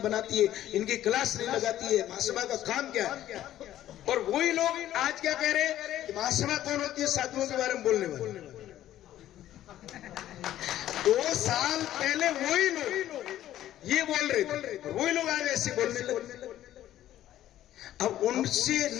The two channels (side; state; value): right; quieter; 12.8 dB